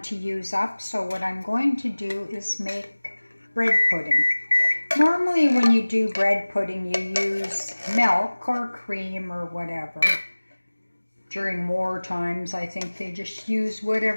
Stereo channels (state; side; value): inverted; both; correlation -1.00